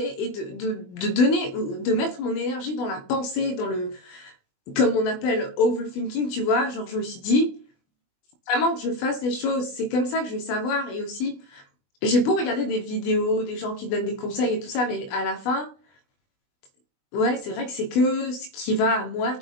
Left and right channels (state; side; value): late; right; 20 ms